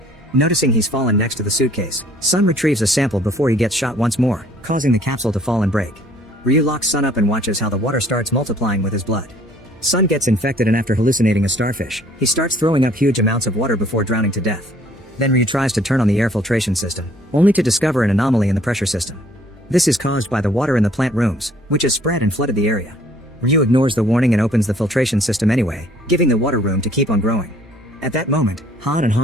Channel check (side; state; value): both; normal; correlation 0.58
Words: Noticing he's fallen next to the suitcase, Sun retrieves a sample before he gets shot once more, causing the capsule to fall and break. Ryu locks Sun up and watches how the water starts multiplying with his blood. Sun gets infected, and after hallucinating a starfish, he starts throwing up huge amounts of water before drowning to death. Then Ryu tries to turn on the air filtration system, only to discover an anomaly in the pressure system. This is caused by the water in the plant rooms, which has spread and flooded the area. Ryu ignores the warning and opens the filtration system anyway, giving the water room to keep on growing. At that moment, Han and